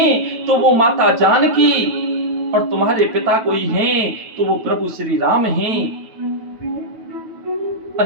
तो वो माता जानकी और तुम्हारे पिता कोई हैं तो वो प्रभु श्री राम हैं।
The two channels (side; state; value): left; late; 9.2 ms